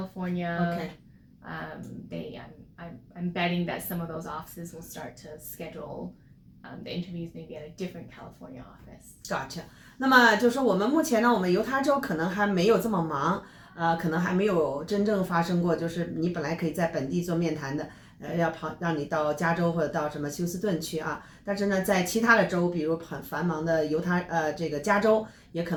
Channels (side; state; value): both; identical; correlation 1.00